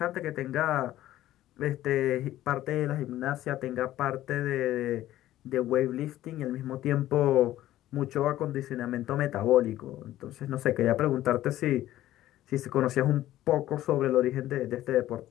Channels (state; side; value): quieter; right; 14.1 dB